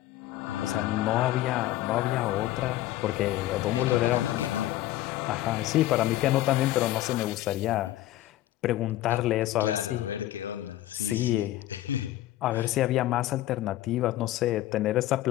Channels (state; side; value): quieter; right; 14.8 dB